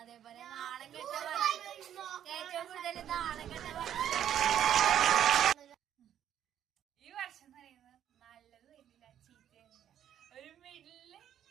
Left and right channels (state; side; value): quieter; left; 10.3 dB